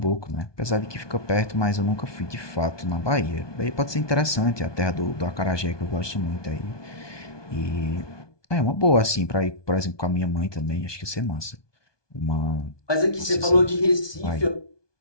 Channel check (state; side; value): late; right; 1.2 ms